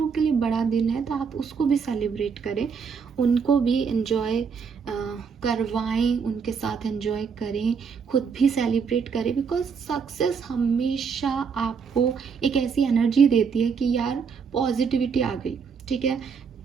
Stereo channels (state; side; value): quieter; left; 6.0 dB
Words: के लिए बड़ा दिन है तो आप उसको भी सेलिब्रेट करें, उनको भी एंजॉय करवाएं, उनके साथ एंजॉय करें, खुद भी सेलिब्रेट करें। बिकॉज सक्सेस हमेशा आपको एक ऐसी एनर्जी देती है कि यार पॉजिटिविटी आ गई, ठीक है।